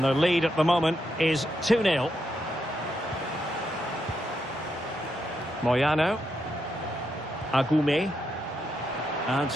their lead at the moment is 2-0. Moyano. Agume. And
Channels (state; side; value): normal; both; correlation 0.82